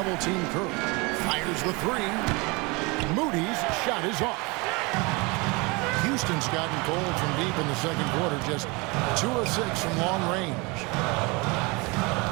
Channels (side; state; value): left; quieter; 27.1 dB